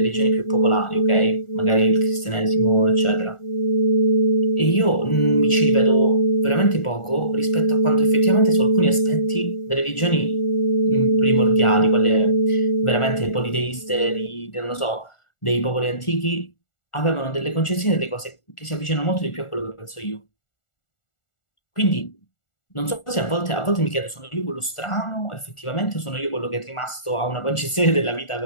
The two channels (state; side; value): late; right; 1.4 ms